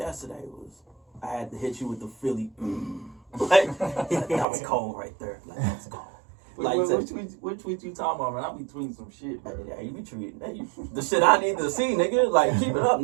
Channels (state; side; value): drops out; left; at 4.5 s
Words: I had to hit you with the Philly. Like, that was cold right there. Like, that was cold. Like, which tweet you talking about, man? I be tweeting some shit, bro. Yeah, you be tweeting the shit I need to see, nigga. Like, keep it up,